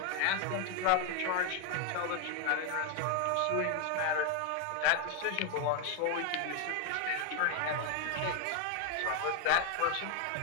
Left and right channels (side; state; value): both; different; correlation 0.01